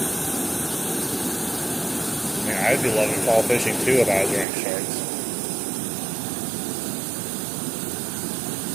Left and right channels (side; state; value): left; drops out; at 4.5 s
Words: I mean, I'd be loving fall fishing too if I was wearing shorts.